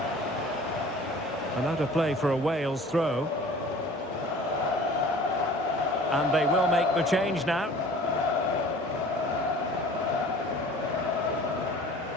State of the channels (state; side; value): normal; both; correlation 0.46